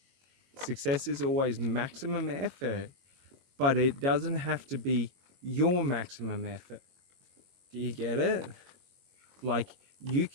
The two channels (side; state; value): left; late; 22 ms